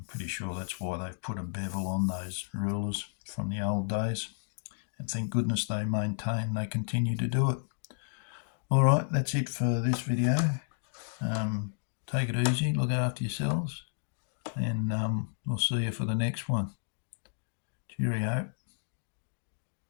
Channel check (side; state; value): right; silent; digital silence